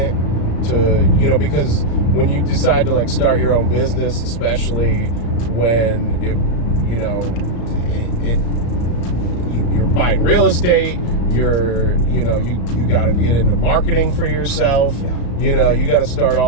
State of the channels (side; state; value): right; late; 34 ms